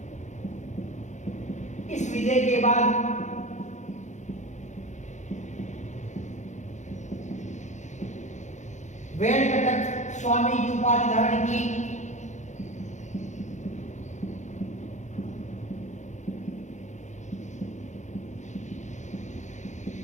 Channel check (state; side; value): late; right; 0.35 ms